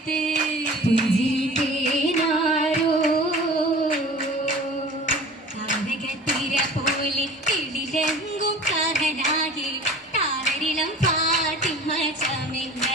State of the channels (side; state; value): both; normal; correlation 0.42